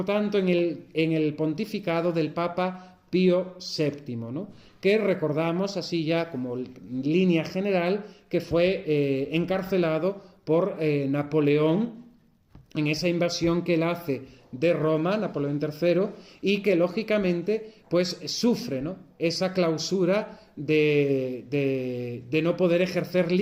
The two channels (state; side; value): identical; both; correlation 1.00